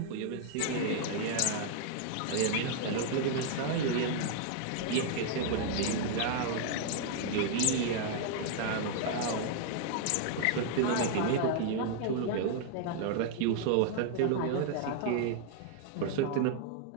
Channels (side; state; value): both; different; correlation -0.01